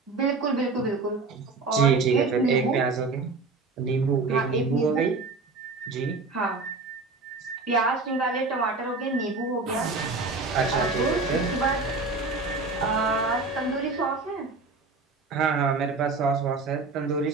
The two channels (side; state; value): left; quieter; 3.9 dB